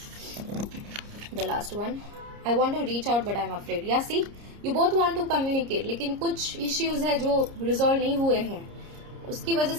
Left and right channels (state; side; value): late; left; 30 ms